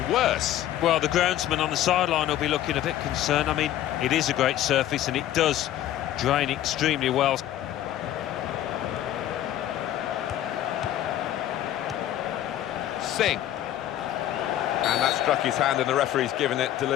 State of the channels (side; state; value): right; quieter; 12.5 dB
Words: worse. Well, the groundsman on the sideline will be looking a bit concerned. I mean, it is a great surface and it does drain extremely well. Singh. And that struck his hand, and the referee's given it